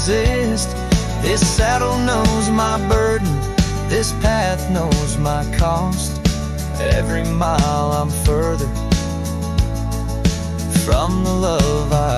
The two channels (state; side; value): identical; both; correlation 1.00